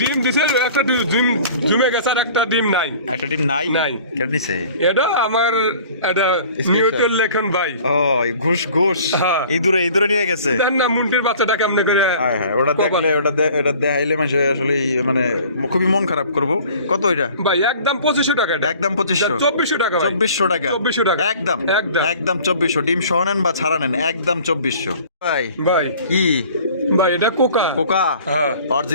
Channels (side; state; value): both; inverted; correlation -0.48